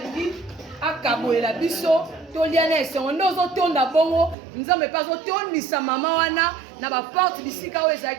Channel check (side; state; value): left; drops out; at 4.4 s